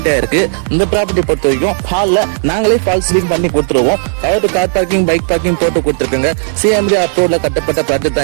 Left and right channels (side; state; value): left; silent; digital silence